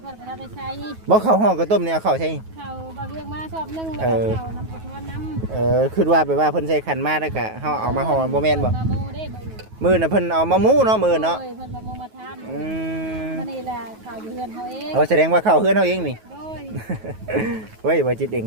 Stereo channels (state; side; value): late; left; 9.3 ms